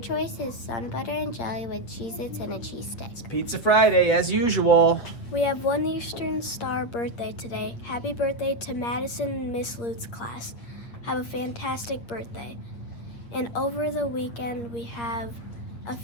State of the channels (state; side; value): late; right; 8.3 ms